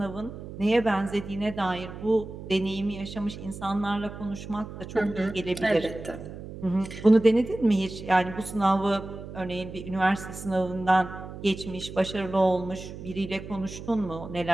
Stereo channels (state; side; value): noise; right; hum, 11 dB below the sound